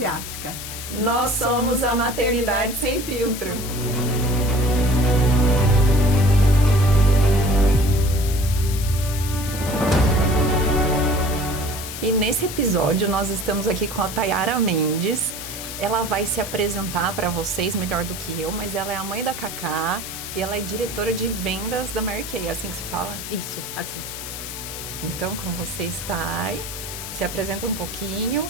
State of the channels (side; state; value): left; noise; hiss, 9 dB below the sound